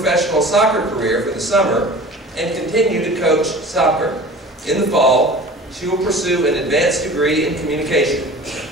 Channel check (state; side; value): normal; both; correlation 0.40